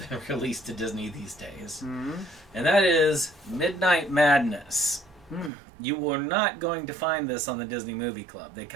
been released to Disney these days. And that is Midnight Madness. You were not going to find this on the Disney Movie Club. They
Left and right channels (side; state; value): left; drops out; at 5.5 s